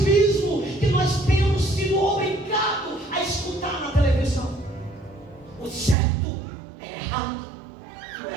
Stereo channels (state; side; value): drops out; left; at 6.0 s